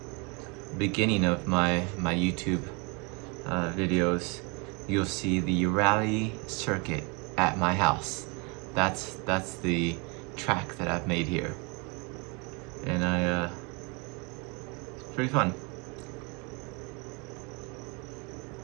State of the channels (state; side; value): quieter; left; 30.8 dB